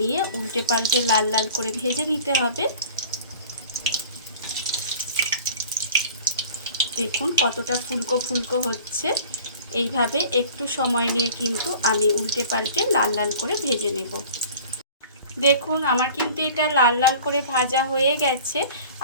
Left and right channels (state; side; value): inverted; both; correlation -0.44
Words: নিয়ে উল্টে পাল্টে লাল লাল করে ভেজে নিতে হবে। দেখুন কতটা ফুলকো ফুলকো হচ্ছে। এইভাবে একটু সময় নিয়ে কিন্তু আমি উল্টে পাল্টে লাল লাল করে ভেজে নেব। দেখুন আমার কিন্তু এটা লাল লাল করে ভাজা হয়ে গেছে।